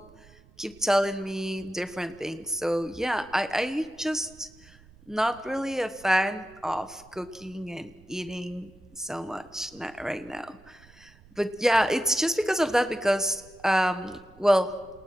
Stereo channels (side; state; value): right; noise; rumble, 25 dB below the sound